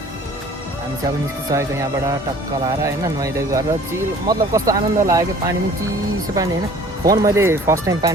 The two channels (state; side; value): normal; both; correlation 0.50